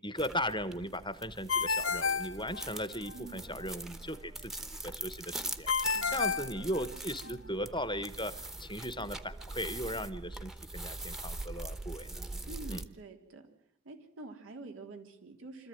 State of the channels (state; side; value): normal; both; correlation 0.03